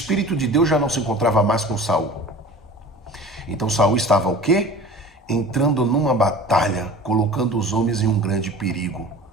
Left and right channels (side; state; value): both; normal; correlation 0.40